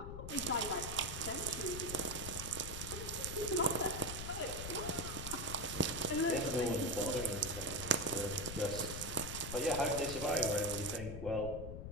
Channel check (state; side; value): noise; left; rumble, 7 dB below the sound